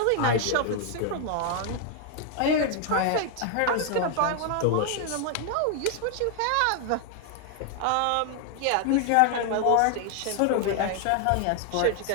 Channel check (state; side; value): different; both; correlation 0.00